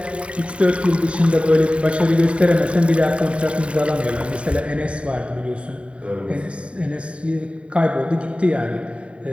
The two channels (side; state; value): left; late; 0.060 ms